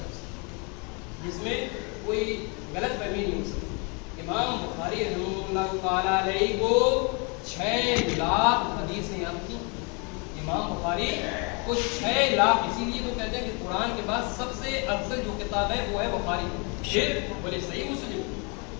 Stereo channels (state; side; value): quieter; right; 33.0 dB